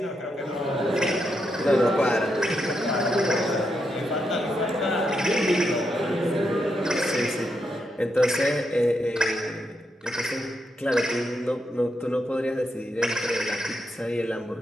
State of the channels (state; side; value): normal; both; correlation 0.82